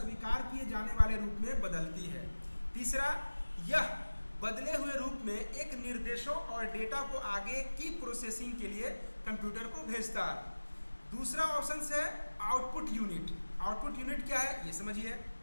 किए जाने वाले रूप में बदलती है। तीसरा, यह बदले हुए रूप में एक निर्देशों और डेटा को आगे की प्रोसेसिंग के लिए कंप्यूटर को भेजता है। दूसरा ऑप्शन है आउटपुट यूनिट। आउटपुट यूनिट क्या है ये समझिए।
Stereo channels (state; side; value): inverted; both; correlation -1.00